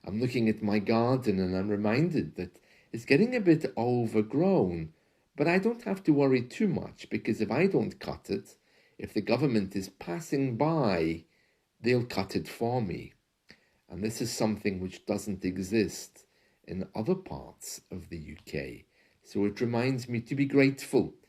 I'm looking at my garden and I'm reminded that it's getting a bit overgrown, but I don't have to worry too much because if I don't cut it, if the government is passing by, they'll cut it for me. And this is something which doesn't exist in other parts of the UK. So it reminds me to be grateful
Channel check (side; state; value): both; identical; correlation 1.00